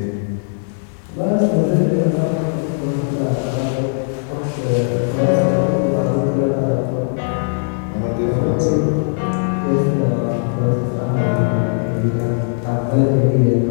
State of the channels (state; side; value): silent; right; digital silence